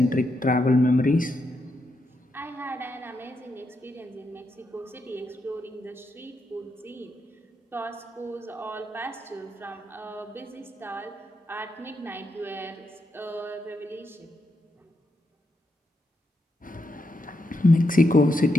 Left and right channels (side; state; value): both; normal; correlation 0.82